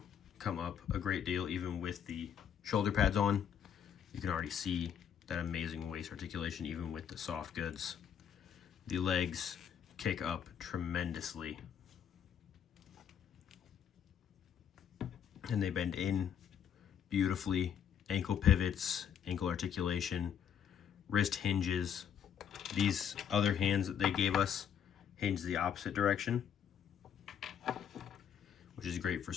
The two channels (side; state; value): right; quieter; 8.4 dB